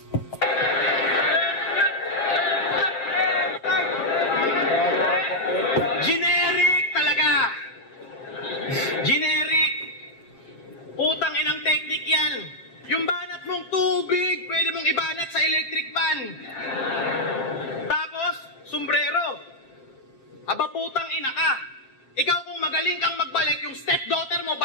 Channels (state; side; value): late; right; 7.5 ms